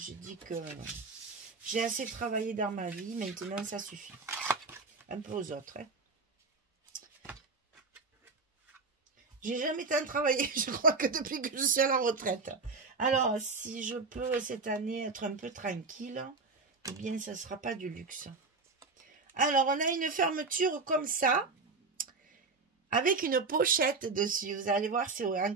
dis que j'ai assez travaillé dans ma vie, maintenant ça suffit. Un peu aux autres, hein. J'ai jamais tant travaillé, je crois que depuis que je suis à la retraite. Alors, si je peux cette année être un peu tranquille, eh bien, ça ne sera pas du luxe. Alors, on a une fermeture comme ça, avec une pochette dessus. Vous allez voir, c'est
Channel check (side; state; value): left; quieter; 4.2 dB